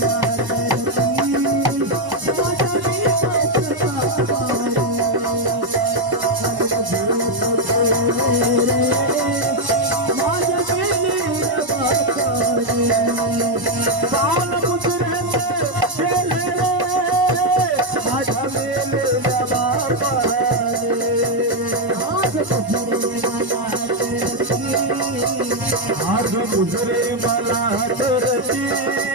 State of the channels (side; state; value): left; late; 1.0 ms